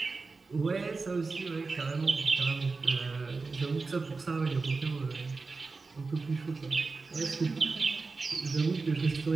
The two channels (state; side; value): quieter; left; 4.1 dB